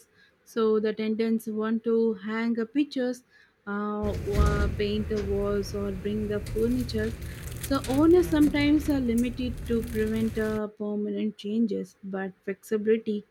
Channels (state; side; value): identical; both; correlation 1.00